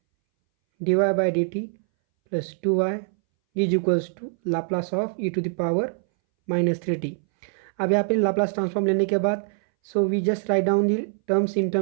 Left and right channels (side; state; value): left; silent; 61 dB below the other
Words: D Y by D T plus two Y is equals to Laplace of E to the power minus three T. अब यहाँ पे लाप्लास ट्रांसफॉर्म लेने के बाद so we just write down the terms in